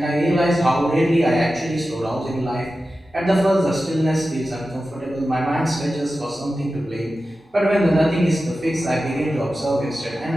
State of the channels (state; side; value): normal; both; correlation 0.93